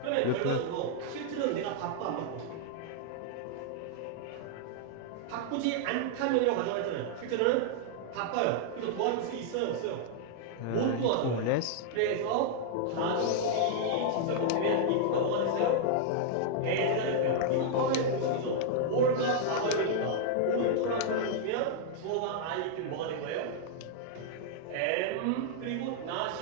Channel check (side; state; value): both; different; correlation -0.01